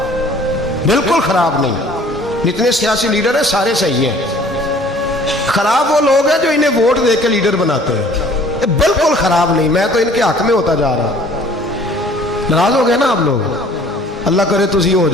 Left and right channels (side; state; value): both; normal; correlation 0.53